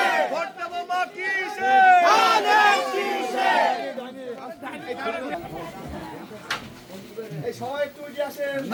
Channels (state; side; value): identical; both; correlation 1.00